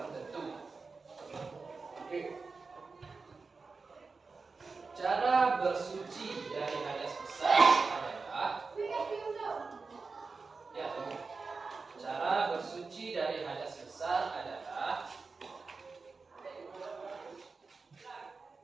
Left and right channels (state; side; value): quieter; left; 4.3 dB